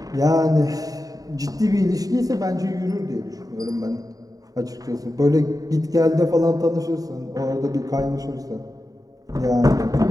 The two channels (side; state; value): left; late; 0.18 ms